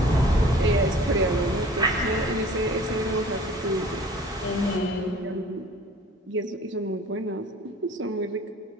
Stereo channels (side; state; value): both; normal; correlation 0.48